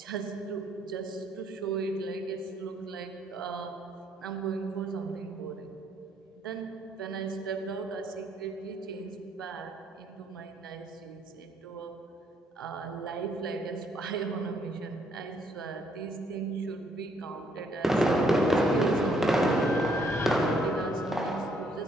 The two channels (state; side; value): normal; both; correlation 0.68